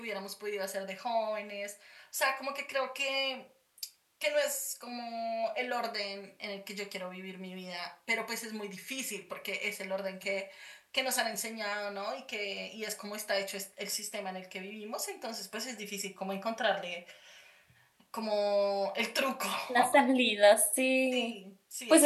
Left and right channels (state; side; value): identical; both; correlation 1.00